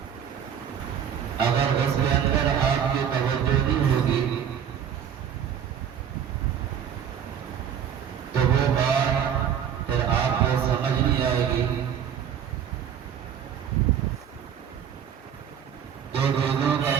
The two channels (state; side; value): quieter; left; 8.5 dB